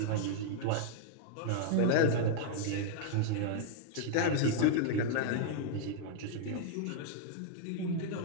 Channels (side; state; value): both; different; correlation -0.01